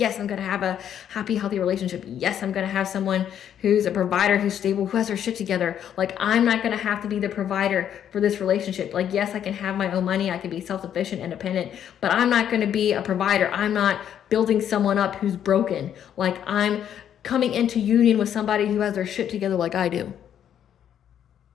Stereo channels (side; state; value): right; quieter; 9.6 dB